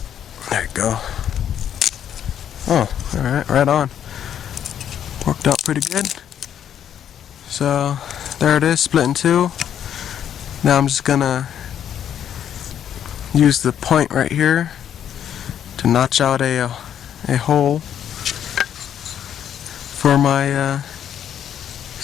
There you go. Oh, alright, right on. Worked out pretty good. So there it is, split in two. Now I'm just gonna use the point right here to notch out a hole for my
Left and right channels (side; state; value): right; quieter; 9.6 dB